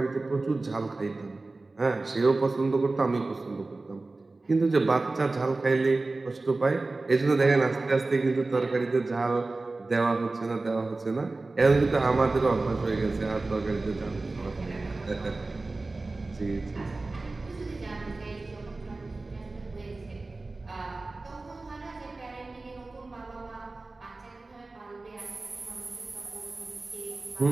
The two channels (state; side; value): quieter; left; 3.3 dB